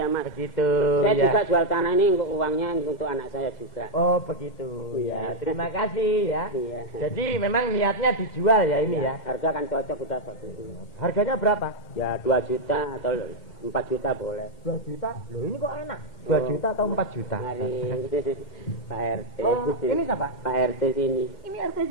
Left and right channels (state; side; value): late; right; 2.0 ms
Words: Mas. Begitu. Saya ya. juga jual tanah ini untuk uangnya untuk anak saya juga. Oh begitu. Ya terima kasih ya. Iya. Jadi memang niatnya dijual ya ini ya. Harga kan cocok udah satu. Harganya berapa? Ya 2 juta atau 4 juta boleh. 2 juta? Loh ini kok enak. 2 juta atau 4 juta? Mari Pak RT. Oh, ini siapa? Pak RT sini. Ini RT